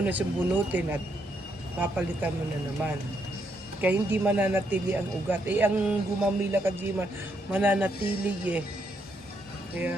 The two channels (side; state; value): both; normal; correlation 0.76